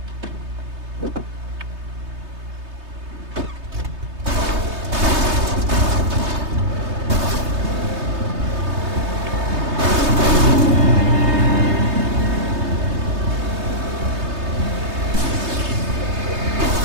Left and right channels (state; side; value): late; left; 3.3 ms